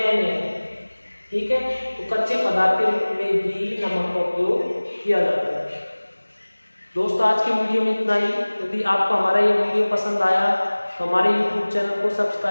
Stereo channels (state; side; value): inverted; both; correlation -1.00